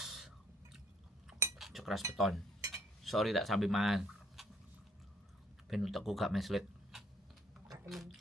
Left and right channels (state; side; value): normal; both; correlation 0.64